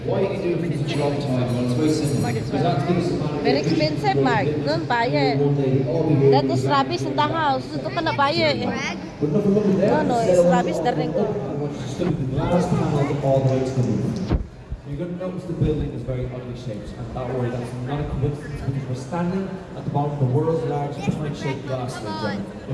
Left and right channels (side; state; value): both; identical; correlation 1.00